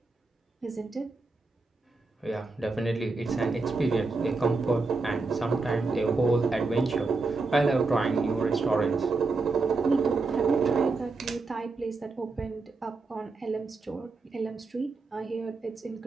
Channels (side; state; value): left; quieter; 3.8 dB